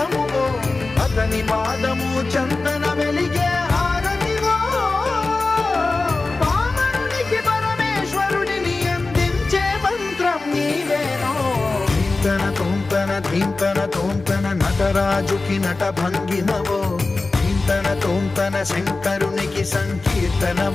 అతని పాదము చందన వెలిగే హారతివో పామరునికి పరమేశ్వరుడిని అందించే మంత్రం నీవేనో ధీంతన తోంతన ధీంతన తోంతన నటరాజుకి నట భంగిమవో ధీంతన తోంతన శంకరునికి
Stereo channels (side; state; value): right; quieter; 3.5 dB